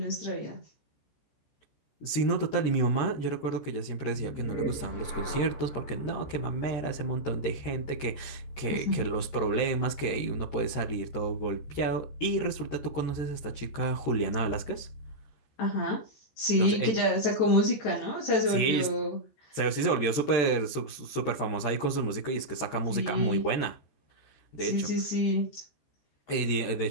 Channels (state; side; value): late; right; 14 ms